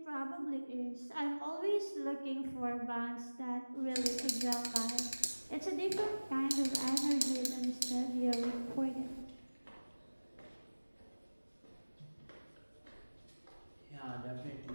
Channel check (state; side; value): inverted; both; correlation -1.00